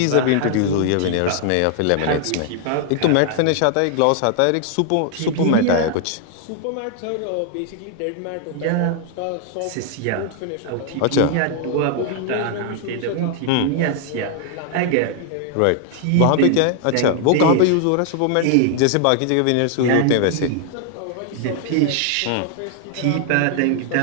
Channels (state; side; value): different; both; correlation 0.00